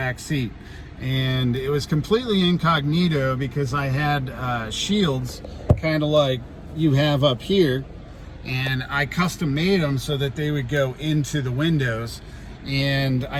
seat. And it was completely incognito because I had shields kind of like you have up here, and I custom made them so that they would go into the windows, and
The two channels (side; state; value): both; identical; correlation 1.00